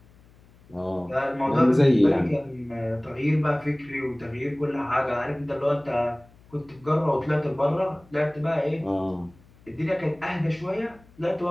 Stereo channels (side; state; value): left; noise; hum, 27 dB below the sound